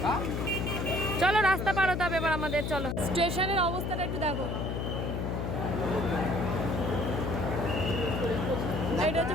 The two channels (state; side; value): noise; left; hum, 2 dB below the sound